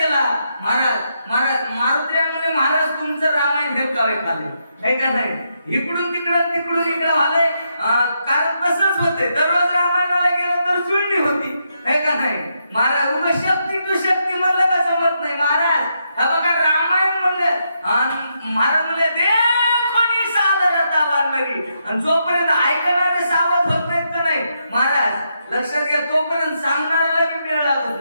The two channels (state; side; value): inverted; both; correlation -0.80